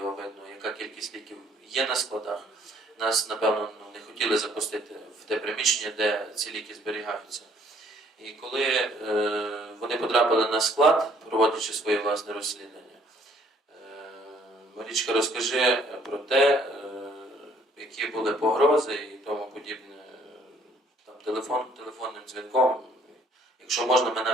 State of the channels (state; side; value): normal; both; correlation 0.62